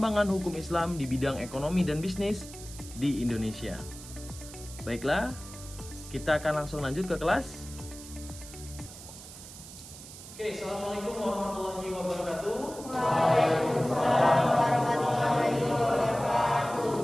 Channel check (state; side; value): noise; right; hiss, 15 dB below the sound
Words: hukum Islam di bidang ekonomi dan bisnis di Indonesia. Baiklah, kita akan langsung lanjut ke kelas. Oke, Assalamualaikum warahmatullahi wabarakatuh. Waalaikumsalam warahmatullahi wabarakatuh.